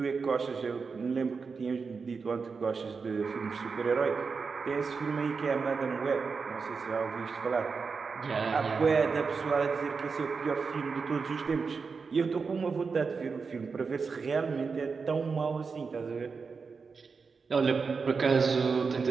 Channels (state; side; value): quieter; left; 5.0 dB